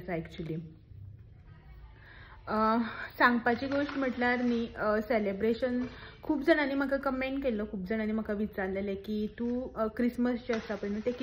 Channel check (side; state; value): both; identical; correlation 1.00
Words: एक्चुली. सांगपाची गोष्ट म्हटल्यार न्ही, सेलिब्रेशन खूब जाणांनी म्हाका कमेंट केल्लो, खूब जाणांनी म्हाका विचारलेलें की तूं क्रिसमस जे आसा पळय न्हू ते